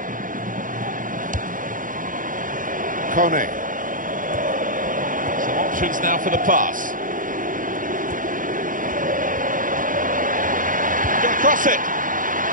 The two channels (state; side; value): late; left; 0.39 ms